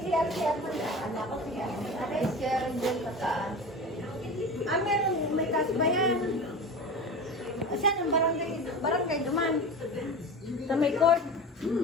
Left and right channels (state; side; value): normal; both; correlation 0.31